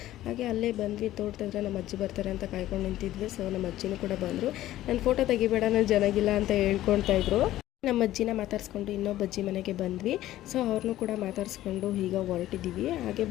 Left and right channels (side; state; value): right; quieter; 14.4 dB